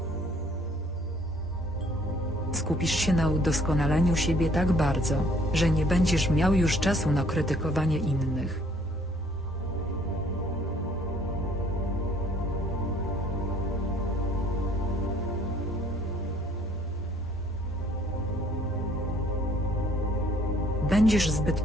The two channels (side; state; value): both; normal; correlation 0.61